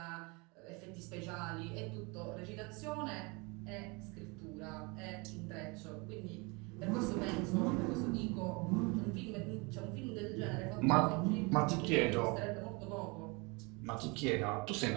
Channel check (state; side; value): quieter; left; 28.4 dB